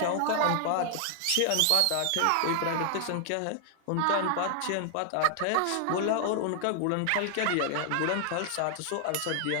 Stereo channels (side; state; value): both; different; correlation 0.00